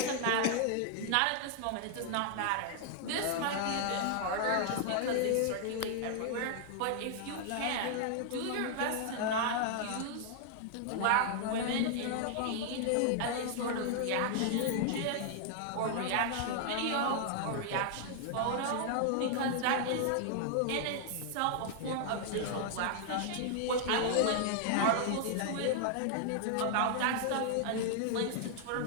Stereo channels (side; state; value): both; different; correlation 0.00